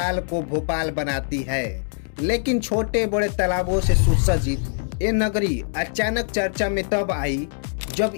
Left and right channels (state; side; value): silent; right; digital silence